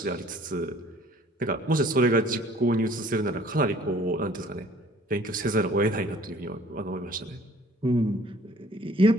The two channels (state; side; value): normal; both; correlation 0.54